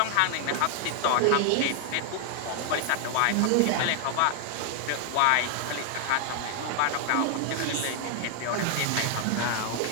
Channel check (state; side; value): different; both; correlation 0.00